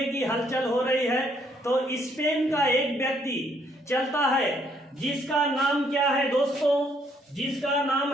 कि हलचल हो रही है, तो स्पेन का एक व्यक्ति चलता है जिसका नाम क्या है दोस्तों, जिसका नाम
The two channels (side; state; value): both; normal; correlation 0.68